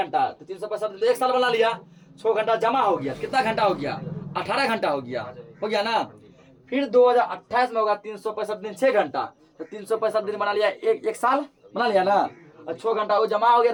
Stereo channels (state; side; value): identical; both; correlation 1.00